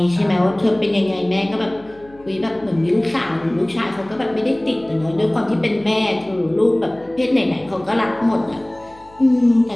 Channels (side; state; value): left; noise; hum, 26 dB below the sound